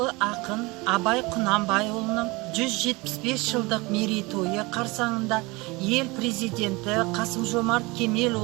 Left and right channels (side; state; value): left; quieter; 24.1 dB